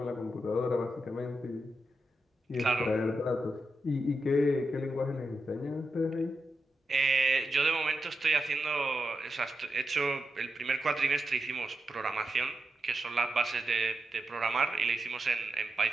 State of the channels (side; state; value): both; normal; correlation 0.87